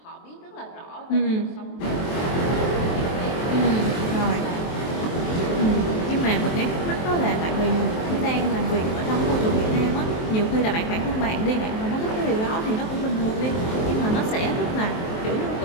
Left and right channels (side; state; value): right; late; 23 ms